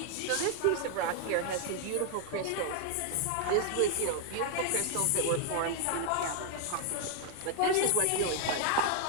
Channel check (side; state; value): both; different; correlation 0.00